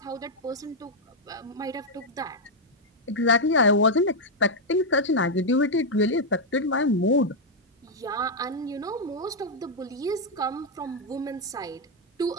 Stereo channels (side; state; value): both; normal; correlation -0.01